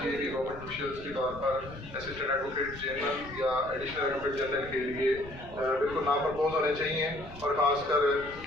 कि गवर्नमेंट ऑफिशियल्स के तौर पर असिस्टेंट एडवोकेट जनरल या एडिशनल एडवोकेट जनरल के लिए बिल्कुल नाम प्रपोज होने चाहिए। और ख़ासकर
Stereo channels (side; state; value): left; noise; rumble, 16 dB below the sound